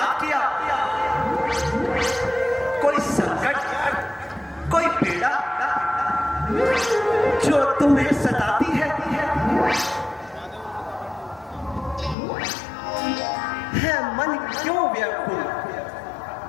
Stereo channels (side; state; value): right; drops out; at 12.2 s